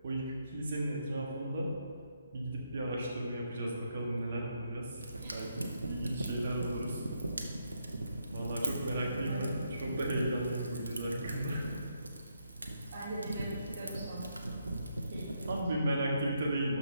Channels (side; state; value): both; inverted; correlation -0.78